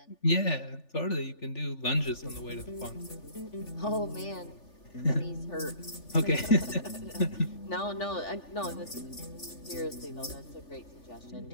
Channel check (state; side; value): late; right; 3.4 ms